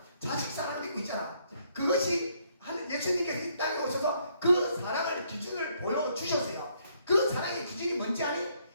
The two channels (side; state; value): both; inverted; correlation -0.70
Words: 자식 사랑도 있고 있잖아. 그것이 예수님께서 이 땅에 오셔서 그 사랑의 기준을 보여주셨어요. 그 사랑의 기준이 뭔지 아니?